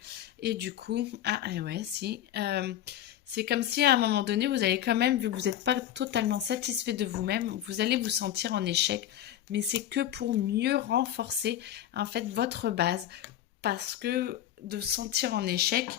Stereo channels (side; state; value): right; quieter; 11.8 dB